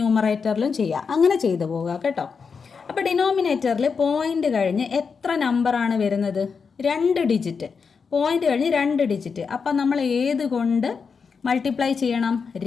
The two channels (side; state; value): right; quieter; 5.6 dB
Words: ചെയ്യുക. അങ്ങനെ ചെയ്തു പോവുക കേട്ടോ. അപ്പോൾ ഡിനോമിനേറ്ററിൽ പോയിൻ്റ് കഴിഞ്ഞ് എത്ര നമ്പറാണ് വരുന്നത്? 2 ഡിജിറ്റ്. പോയിൻ്റ് കഴിഞ്ഞ് 2 ഡിജിറ്റ്. അപ്പം നമ്മൾ ഏത് കൊണ്ട് മൾട്ടിപ്ലൈ ചെയ്യണം?